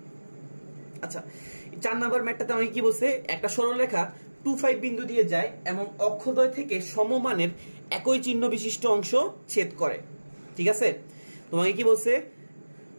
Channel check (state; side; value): inverted; both; correlation -1.00